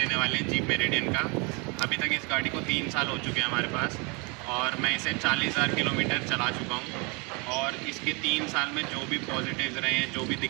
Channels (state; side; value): quieter; left; 30.8 dB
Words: वाले हैं जीप मेरिडियन का। अभी तक इस गाड़ी को 3 साल हो चुके हैं हमारे पास और मैं इसे 40,000 किलोमीटर चला चुका हूँ। और इसके 3 साल में जो भी पॉजिटिव्स रहे हैं, जो भी